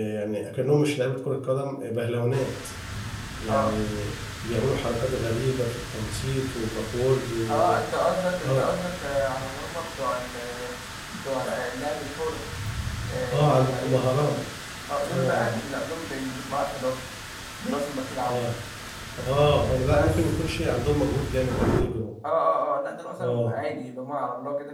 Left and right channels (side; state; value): both; identical; correlation 1.00